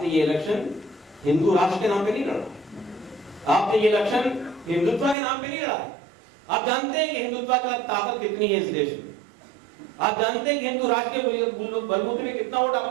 ये इलेक्शन हिंदू राष्ट्र के नाम पे नहीं लड़ा, आपने ये इलेक्शन हिंदुत्व के नाम पे नहीं लड़ा। आप जानते हैं कि हिंदुत्व की ताकत कितनी है इस देश में, आप जानते हैं कि हिंदू राष्ट्र के बलबूते में कितना वोट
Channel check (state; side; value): drops out; left; at 5.2 s